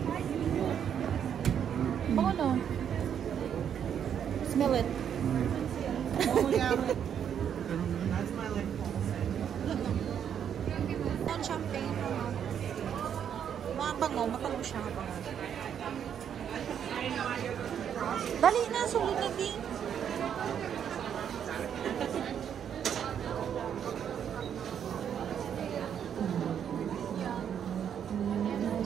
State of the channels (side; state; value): left; quieter; 8.6 dB